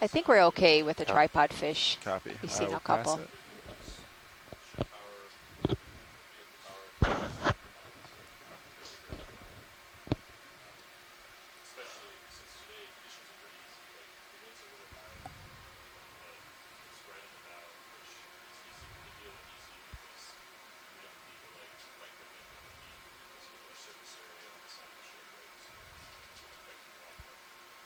think we're okay with the Yeah. tripod fish. Copy. We've I seen will a pass couple. it.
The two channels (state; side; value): identical; both; correlation 1.00